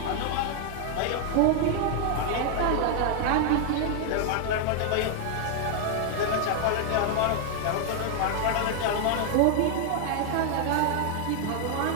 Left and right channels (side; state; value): both; different; correlation 0.00